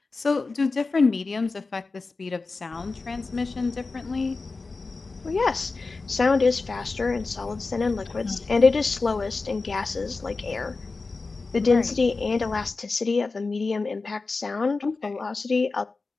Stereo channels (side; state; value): right; quieter; 3.9 dB